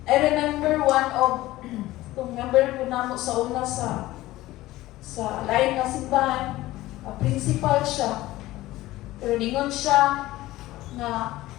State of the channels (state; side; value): quieter; right; 17.0 dB